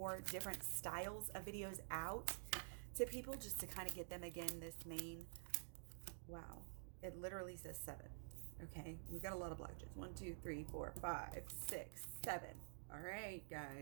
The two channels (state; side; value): silent; left; digital silence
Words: different styles of videos out to people, just to kind of get them, again, this main, wow, it literally says 7. Okay, we've got a lot of blockages. 1, 2, 3, 4, 5, 6, 7. All right,